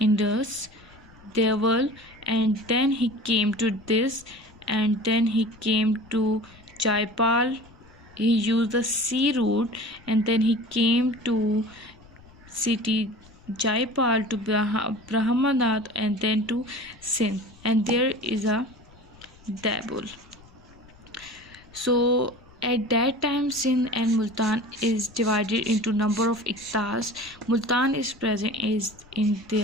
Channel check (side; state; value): left; noise; rumble, 25 dB below the sound